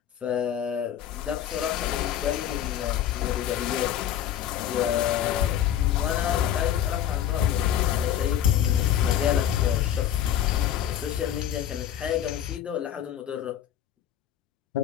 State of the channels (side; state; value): right; quieter; 10.5 dB